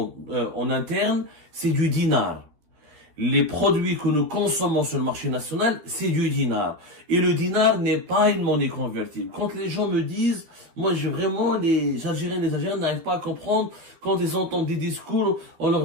en interne, c'est du dinar. Les produits que nous consommons sur le marché national, c'est du dinar. Et le dinar n'est pas une monnaie convertible. Quand les gens me disent, moi j'ai vraiment, les Algériens n'arrivent pas à comprendre, quand ils entendent des discours, on leur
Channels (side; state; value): left; late; 13 ms